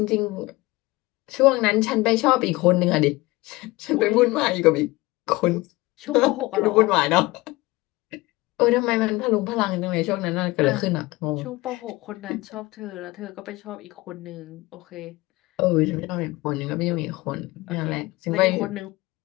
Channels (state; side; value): quieter; right; 20.9 dB